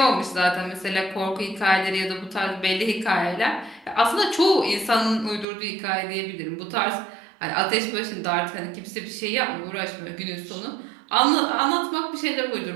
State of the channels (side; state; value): left; drops out; at 5.5 s